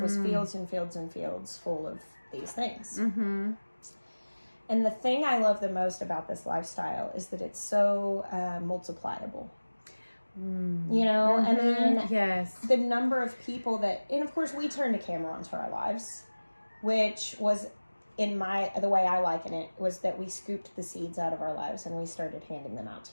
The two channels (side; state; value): both; inverted; correlation -1.00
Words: fields and fields and fields full of these things. And the thing I love the most about this lifestyle is that it's so multipliable. I mean, yes, the number of people and of course we turned a camera onto our lives, which was the way I liken it was that we scooped the seeds out of our lives and we started handing them out to